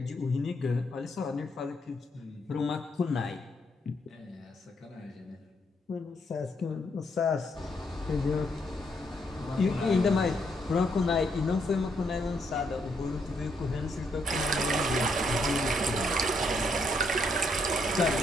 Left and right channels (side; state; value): both; normal; correlation 0.75